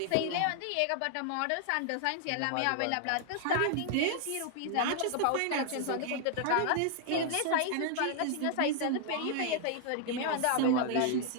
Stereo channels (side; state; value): both; different; correlation 0.00